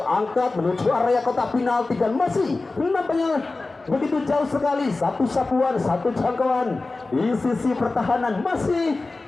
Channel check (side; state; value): right; quieter; 3.4 dB